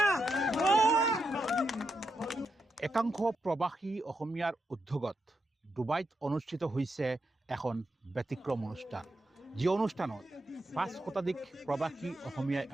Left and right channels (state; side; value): normal; both; correlation 0.84